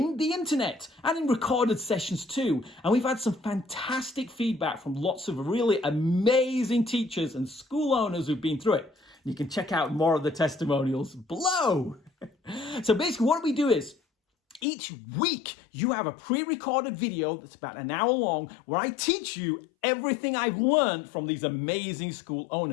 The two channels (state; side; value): drops out; right; at 14.7 s